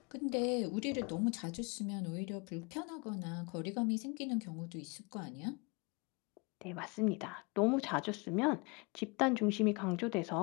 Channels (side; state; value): right; quieter; 29.9 dB